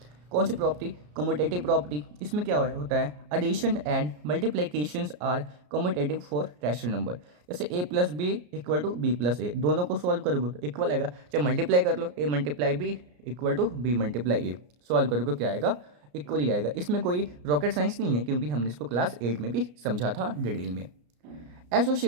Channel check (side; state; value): left; late; 34 ms